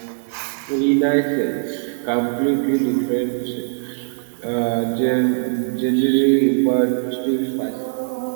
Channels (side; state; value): left; silent; digital silence